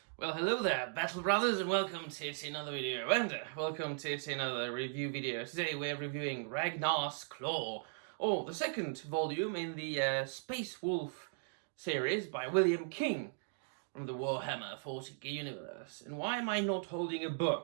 Well, hello there, Battle Brothers, and welcome to yet another video, and welcome to yet another review video. Today we're reviewing Ragnar's Claw, or the second volume in the Space Wolf series by William King from the Warhammer 40k universe. And why am I not holding a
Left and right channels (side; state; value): left; silent; digital silence